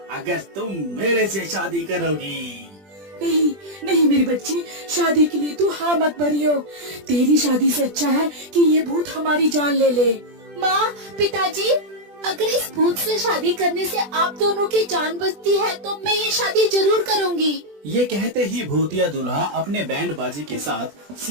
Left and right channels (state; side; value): late; left; 20 ms